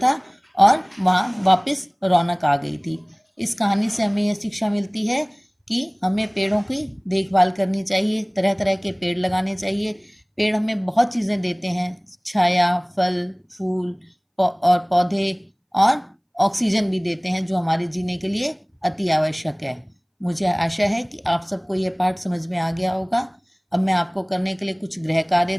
और वहाँ वापस रौनक आ गई थी। इस कहानी से हमें यह शिक्षा मिलती है कि हमें पेड़ों की देखभाल करनी चाहिए, तरह तरह के पेड़ लगाने चाहिए। पेड़ हमें बहुत चीज़ें देते हैं, छाया, फल, फूल और पौधे और ऑक्सीजन भी देते हैं जो हमारे जीने के लिए अति आवश्यक है। मुझे आशा है कि आप सबको ये पाठ समझ में आ गया होगा। अब मैं आपको करने के लिए कुछ गृह कार्य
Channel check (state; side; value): identical; both; correlation 1.00